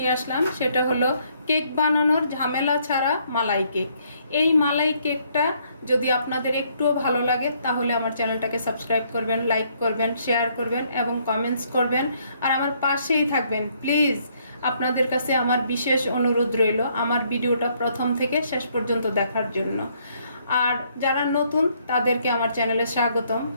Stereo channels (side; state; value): both; inverted; correlation -0.69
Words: আসলাম, সেটা হলো কেক বানানোর ঝামেলা ছাড়া মালাই কেক। এই মালাই কেকটা যদি আপনাদের একটুও ভালো লাগে তাহলে আমার চ্যানেলটাকে সাবস্ক্রাইব করবেন, লাইক করবেন, শেয়ার করবেন এবং কমেন্টস করবেন, আর আমার পাশেই থাকবেন প্লিজ। আপনাদের কাছে আমার বিশেষ অনুরোধ রইল আমার ভিডিওটা প্রথম থেকে শেষ পর্যন্ত দেখার জন্য। আর যারা নতুন তাদেরকে আমার চ্যানেলে স্বাগতম,